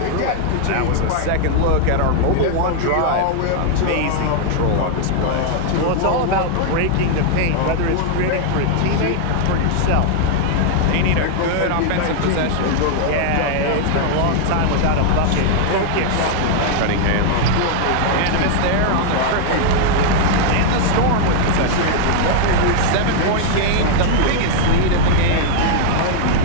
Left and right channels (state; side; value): different; both; correlation 0.00